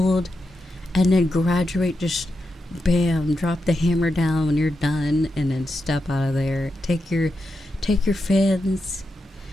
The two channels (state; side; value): normal; both; correlation 0.87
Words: and then graduate. Just bam, drop the hammer down when you're done, and then step out of there. Take your fans,